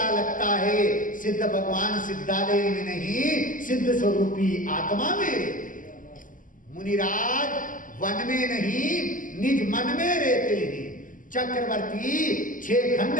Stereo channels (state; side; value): late; right; 0.38 ms